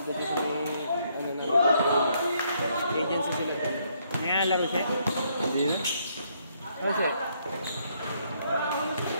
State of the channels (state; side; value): inverted; both; correlation -0.71